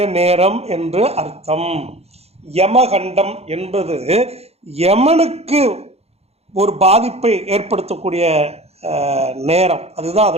நேரம் என்று அர்த்தம். யமகண்டம் என்பது யமனுக்கு ஒரு பாதிப்பை ஏற்படுத்தக்கூடிய நேரம். அதுதான்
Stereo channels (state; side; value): late; left; 0.30 ms